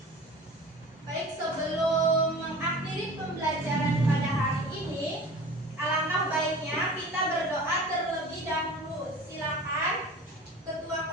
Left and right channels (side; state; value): both; normal; correlation 0.39